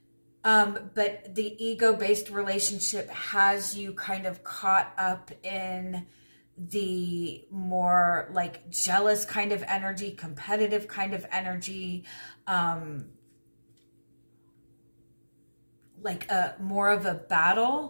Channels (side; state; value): both; inverted; correlation -1.00